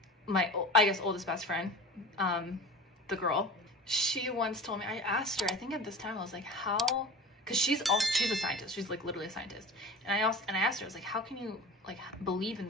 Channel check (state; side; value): normal; both; correlation 0.36